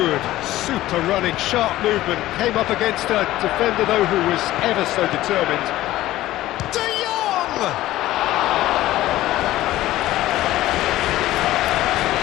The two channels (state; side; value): quieter; right; 15.5 dB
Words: Super running, sharp movement. Came up against a defender, though, who was ever so determined. De Jong!